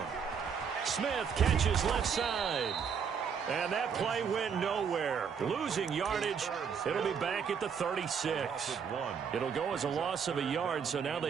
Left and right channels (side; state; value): left; quieter; 6.8 dB